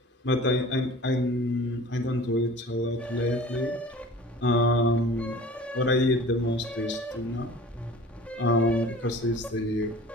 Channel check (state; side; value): normal; both; correlation 0.43